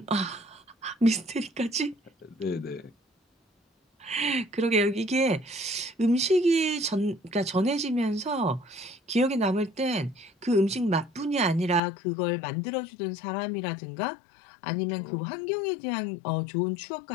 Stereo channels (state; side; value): drops out; right; at 11.8 s